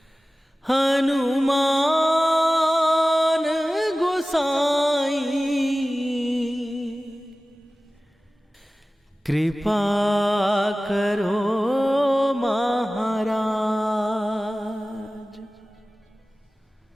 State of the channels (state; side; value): normal; both; correlation 0.97